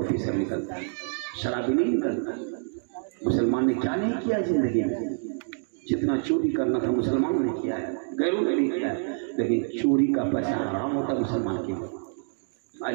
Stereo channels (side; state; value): left; silent; digital silence